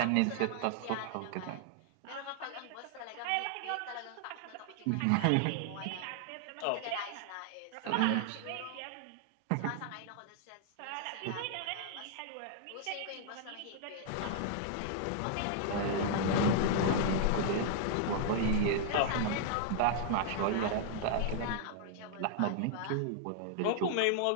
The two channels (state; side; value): different; both; correlation 0.00